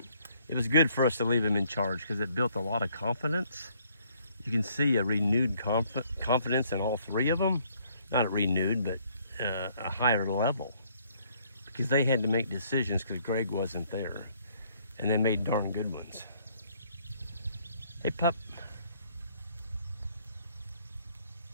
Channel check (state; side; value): inverted; both; correlation -0.65